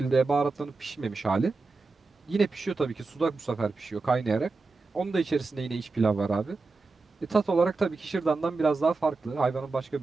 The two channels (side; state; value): left; quieter; 3.9 dB